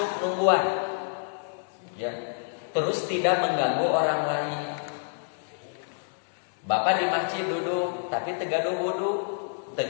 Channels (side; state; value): right; silent; digital silence